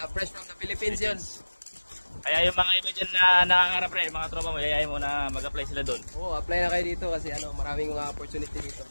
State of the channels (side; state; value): both; inverted; correlation -1.00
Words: Fresh from the Philippines yun. Kaya yung mga iba dyan na nangangarap, pre, mga tropa mo, yayayin mo na mag-apply sila doon. Oo, apply na kayo dito kasi maraming mga opportunity dito.